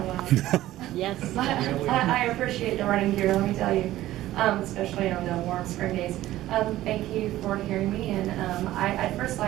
Yes. I appreciate the running gear, let me tell you, especially on the warm spring days. Thank you for hearing me, and I'd first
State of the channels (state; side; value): quieter; left; 14.9 dB